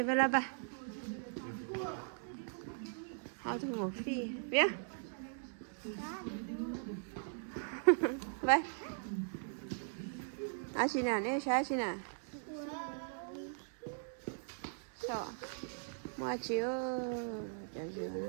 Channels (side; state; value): left; silent; digital silence